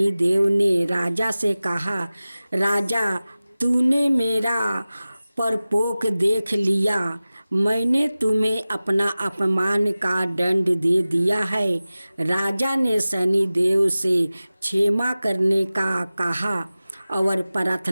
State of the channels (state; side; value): inverted; both; correlation -0.97